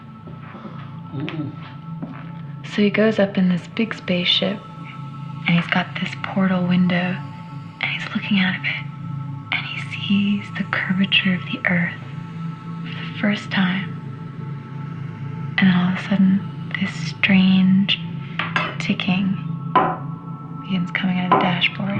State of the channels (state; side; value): identical; both; correlation 1.00